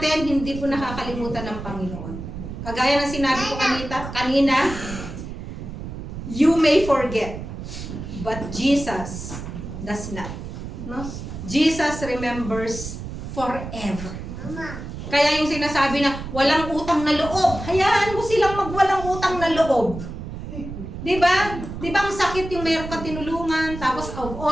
hindi po nakakalimutan ng Panginoon. Kagaya ng sinabi ko kanina, you may forget, but Jesus does not. No? Jesus remembers forever. Kaya yung sinasabi na walang utang na loob, hayaan mo silang magwalang utang na loob. Di ba? Di ba ang sakit yung meron ka tinulungan, tapos of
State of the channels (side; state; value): right; noise; rumble, 9 dB below the sound